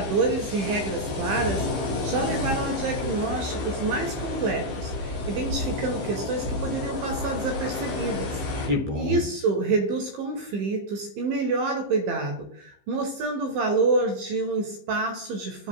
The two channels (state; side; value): late; left; 15 ms